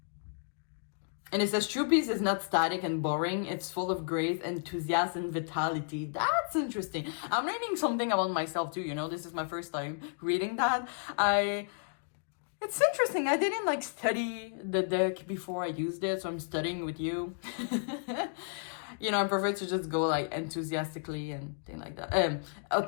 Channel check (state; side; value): silent; right; digital silence